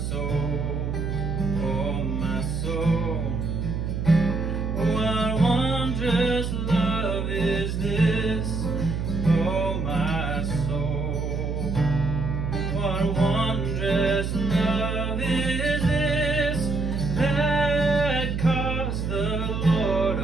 oh my soul. What wondrous love is this, oh my soul. What wondrous love is this, that caused the Lord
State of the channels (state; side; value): noise; right; hum, 2 dB below the sound